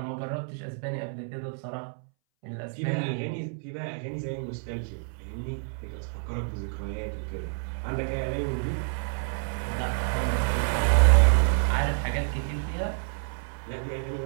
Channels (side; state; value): left; silent; 59 dB below the other